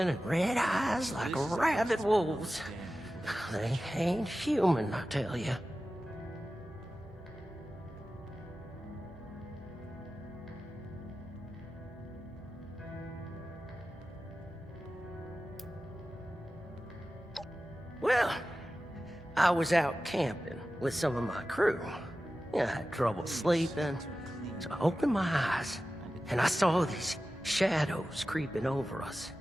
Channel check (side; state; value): both; normal; correlation 0.94